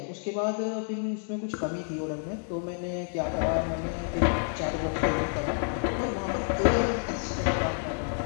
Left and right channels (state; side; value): silent; right; 58 dB below the other